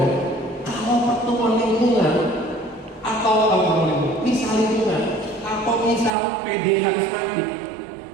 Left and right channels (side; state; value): left; drops out; at 6.1 s